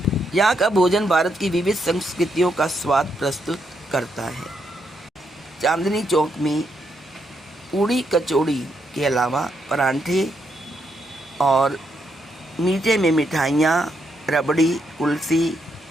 यहाँ का भोजन भारत की विविध संस्कृतियों का स्वाद प्रस्तुत करता है। चांदनी चौक में पूड़ी कचौड़ी के अलावा परांठे, और मीठे में मिठाइयाँ, रबड़ी, कुल्फ़ी,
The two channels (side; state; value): both; normal; correlation 0.78